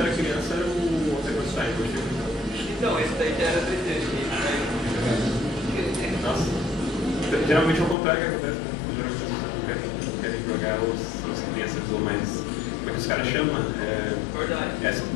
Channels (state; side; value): drops out; right; at 8.0 s